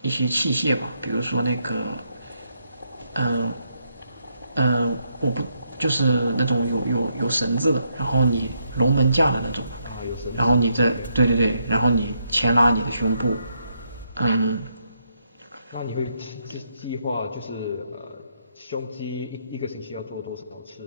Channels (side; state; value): both; inverted; correlation -0.77